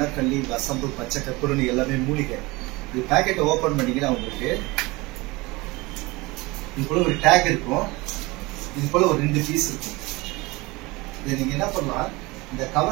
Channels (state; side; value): quieter; left; 23.0 dB